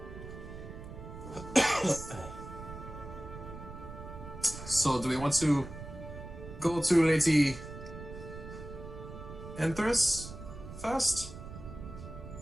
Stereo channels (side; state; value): right; noise; rumble, 12 dB below the sound